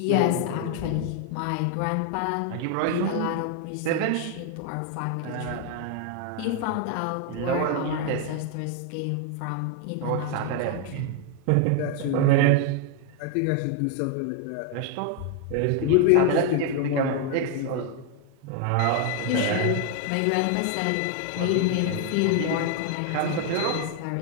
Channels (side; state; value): both; different; correlation 0.01